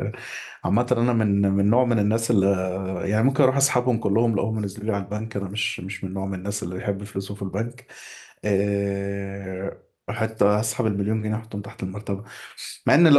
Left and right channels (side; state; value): both; identical; correlation 1.00